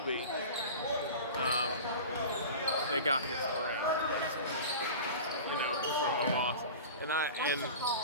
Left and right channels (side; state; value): both; inverted; correlation -0.34